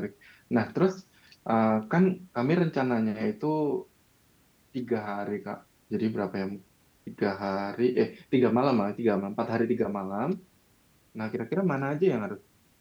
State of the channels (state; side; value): identical; both; correlation 1.00